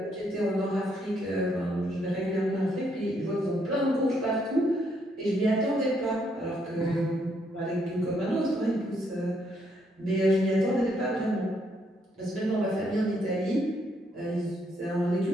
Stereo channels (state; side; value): normal; both; correlation 0.73